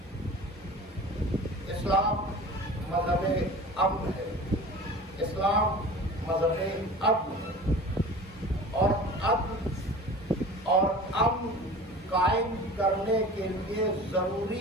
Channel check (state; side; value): normal; both; correlation 0.39